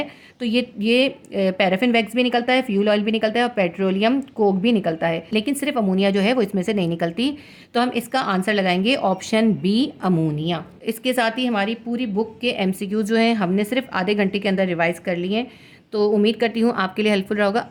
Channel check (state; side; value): identical; both; correlation 1.00